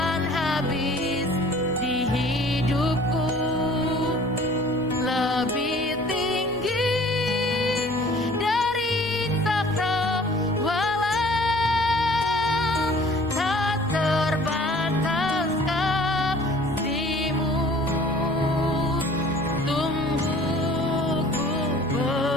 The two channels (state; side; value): normal; both; correlation 0.51